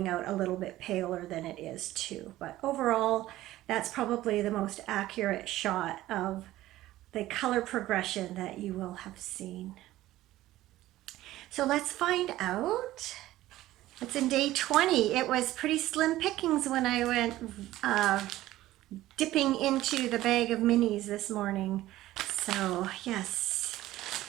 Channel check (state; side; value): quieter; left; 15.5 dB